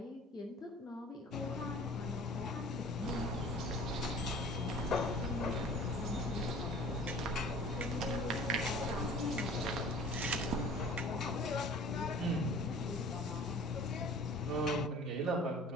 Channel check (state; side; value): normal; both; correlation 0.46